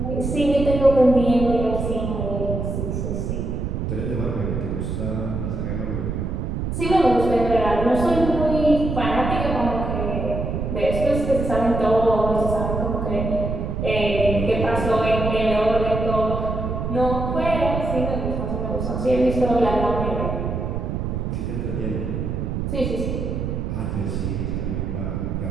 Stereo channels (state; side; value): noise; right; rumble, 2 dB below the sound